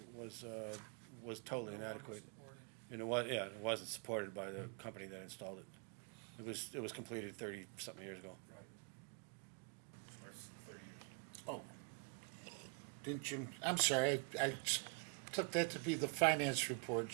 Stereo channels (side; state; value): left; quieter; 36.6 dB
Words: was totally inadequate. And it wasn't supported by the company that installed it. It was completed 30-something years ago. Oh. Didn't Jim, I'm sorry, I took that to be the finance report,